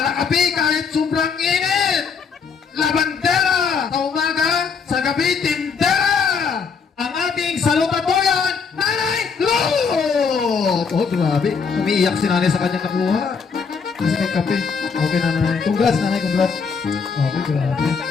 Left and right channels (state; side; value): quieter; right; 5.7 dB